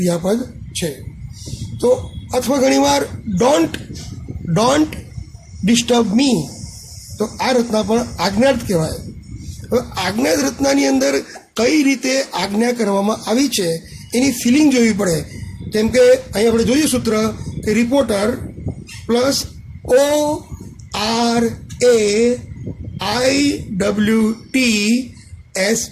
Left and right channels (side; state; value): both; identical; correlation 1.00